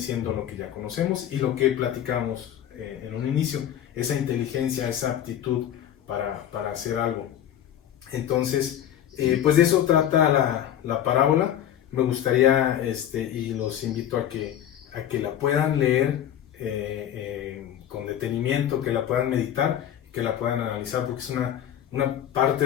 lo que ya conocemos y lo que platicamos en un inicio, esa inteligencia, esa aptitud para hacer algo. Entonces, pues de eso trata la parábola. Me gustaría, y los invito a que la puedan leer con detenimiento, que la puedan meditar, que la puedan analizar, porque es una parte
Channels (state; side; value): quieter; right; 10.7 dB